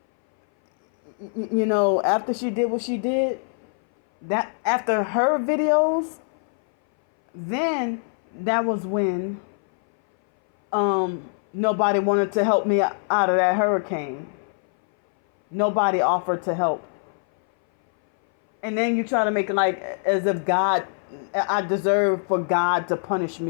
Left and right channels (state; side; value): silent; right; 60 dB below the other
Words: after she did what she did, that after her videos, then that was when nobody wanted to help me out of that hurricane. Nobody offered to help. And then you try to make it like as if I deserve for God to punish